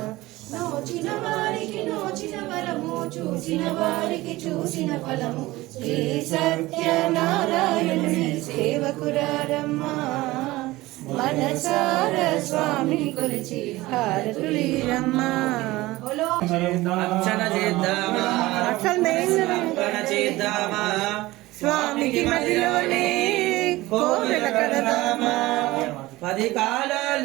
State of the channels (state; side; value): quieter; left; 18.9 dB